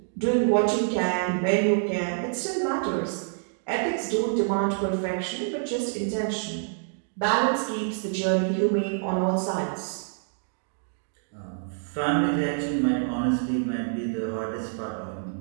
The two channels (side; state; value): left; silent; digital silence